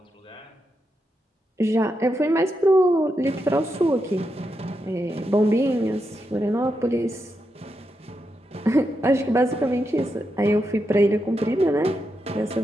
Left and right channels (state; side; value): normal; both; correlation 0.85